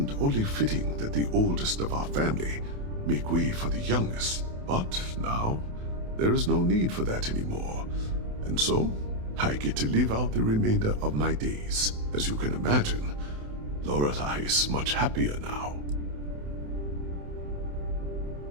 only fitting that the oldest of our family make way for the youngest. But now, there is no need for that anymore. And so, I get to live out the remainder of my days. As you can imagine, Lorelei is much happier now.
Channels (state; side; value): late; left; 28 ms